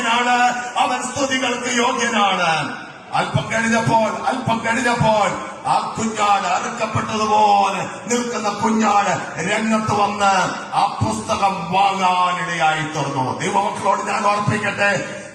അവൻ സ്തുതികൾക്ക് യോഗ്യനാണ്. അല്പം കഴിഞ്ഞപ്പോൾ ആ കുഞ്ഞാട് അറുക്കപ്പെട്ടതുപോലെ നിൽക്കുന്ന കുഞ്ഞാട് രംഗത്ത് വന്ന് ആ പുസ്തകം വാങ്ങാനിടയായി തുറന്നു. ദൈവമക്കളോട് ഞാൻ ഓർപ്പിക്കട്ടെ,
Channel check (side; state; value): both; identical; correlation 1.00